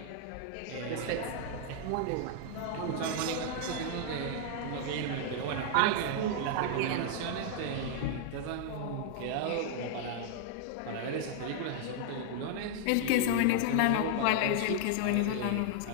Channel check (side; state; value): both; different; correlation -0.01